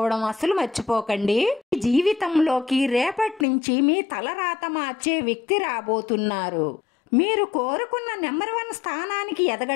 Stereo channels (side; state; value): right; drops out; at 3.5 s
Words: అసలు మర్చిపోకండి. జీవితంలోకి రేపటి నుంచి మీ తలరాత మార్చే వ్యక్తి రాబోతున్నారు. మీరు కోరుకున్న నెంబర్ 1 స్థానానికి